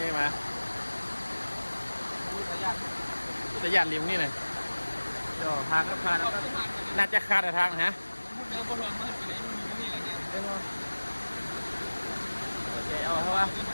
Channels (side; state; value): both; inverted; correlation -1.00